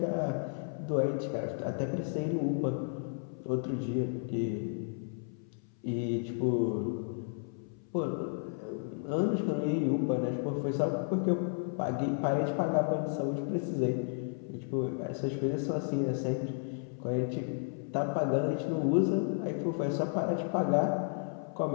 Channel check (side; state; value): right; silent; 56 dB below the other